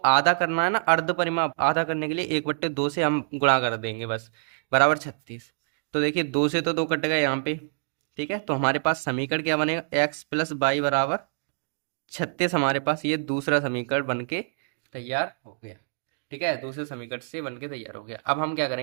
करना है ना, अर्ध परिमाप आधा करने के लिए 1/2 से हम गुणा कर देंगे बस, बराबर 36। तो देखिए 2 से तो 2 कट गए यहाँ पे। ठीक है, तो हमारे पास समीकरण क्या बनेगा, x प्लस बाई बराबर 36। हमारे पास ये दूसरा समीकरण बन के तैयार हो गया। ठीक है, दूसरे समीकरण से बन के तैयार हो गया। अब हम क्या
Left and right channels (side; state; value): left; silent; digital silence